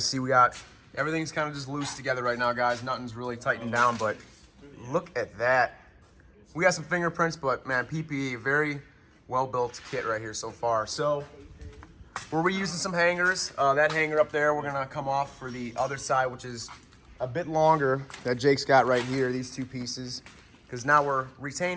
see we got... Everything's kind of just loose together right now, guys. Nothing's really tightened down, but look at that. We got some fingerprints, but man, PPE, very well-built kit right here so far. So we're reusing some hangers. That hanger up there, we're gonna come off for the other side, which is a bit longer, that Jake's got right here, these two pieces. Because now we're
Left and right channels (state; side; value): identical; both; correlation 1.00